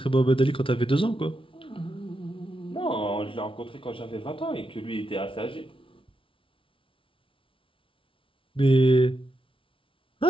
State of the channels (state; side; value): late; right; 0.25 ms